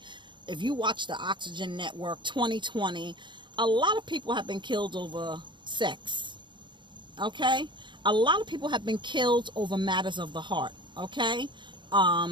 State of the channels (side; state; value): left; late; 0.23 ms